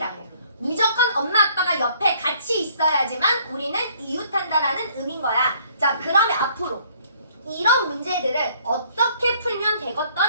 무조건 엄마, 아빠가 옆에 같이 있어야지만 우리는 이웃한다라는 의미인 거야. 자, 그러면 앞으로 이런 문제들을 어떻게 풀면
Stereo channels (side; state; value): both; inverted; correlation -0.61